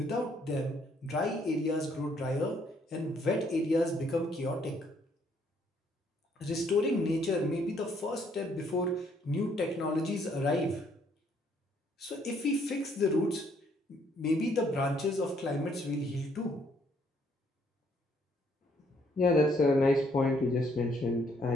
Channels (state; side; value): normal; both; correlation 0.68